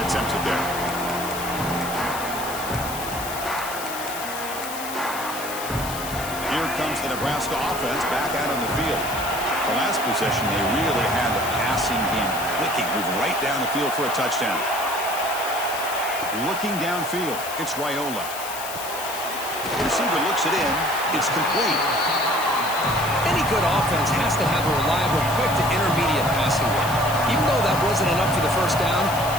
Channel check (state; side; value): noise; left; hiss, 9 dB below the sound